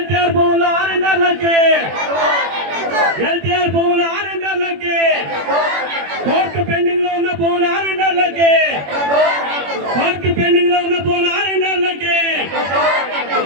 భూముల ఆరండాలకి, ఎల్టీఆర్ భూముల ఆరండాలకి, కోర్టు పెండింగ్ లో ఉన్న భూముల ఆరండాలకి, కోర్టు పెండింగ్ లో ఉన్న భూముల ఆరండాలకి,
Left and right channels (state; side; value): late; left; 21 ms